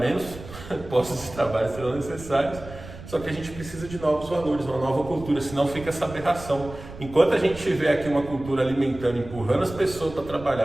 postos de trabalho serão necessários. Só que a gente precisa de novos valores, uma nova cultura, senão fica essa aberração. Enquanto a gente tiver aqui uma cultura alimentando, empurrando as pessoas para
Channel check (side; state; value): right; noise; rumble, 15 dB below the sound